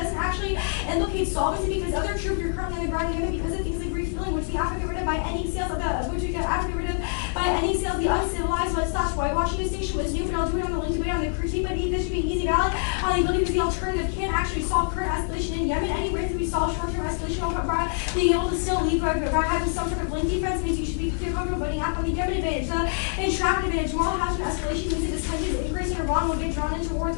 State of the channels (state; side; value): silent; right; digital silence